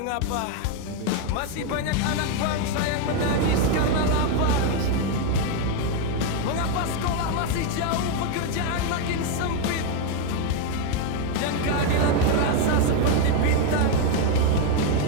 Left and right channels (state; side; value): different; both; correlation 0.01